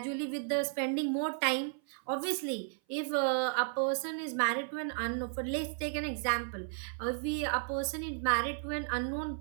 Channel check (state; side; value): silent; left; 55 dB below the other